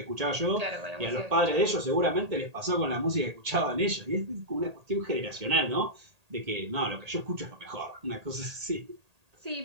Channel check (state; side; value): late; left; 1.8 ms